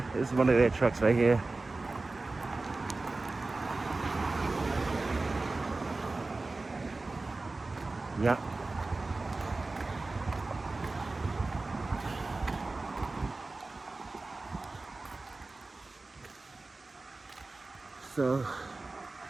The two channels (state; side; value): quieter; left; 3.4 dB